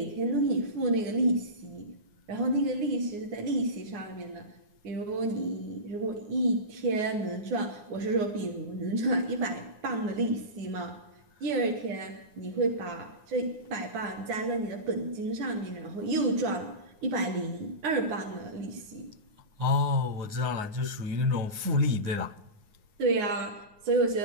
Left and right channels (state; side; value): late; left; 9.6 ms